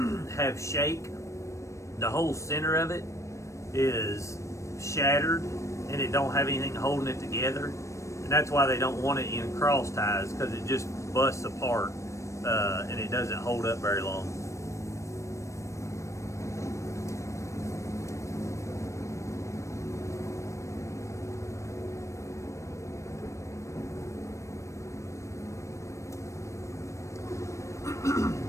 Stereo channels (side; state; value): right; late; 0.15 ms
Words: have shake, the whole center of it is shattered and it don't have anything holding it together. And that's why they don't want it in cross ties, because it just busts apart. And it doesn't hold up very long.